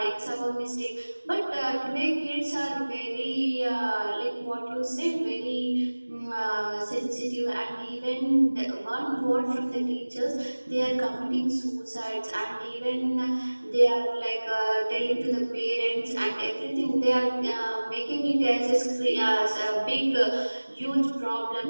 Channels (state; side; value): inverted; both; correlation -1.00